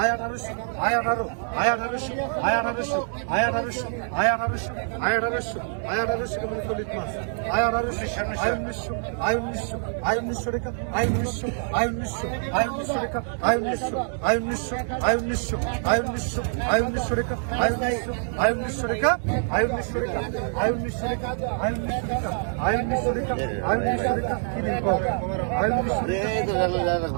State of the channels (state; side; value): silent; left; 57 dB below the other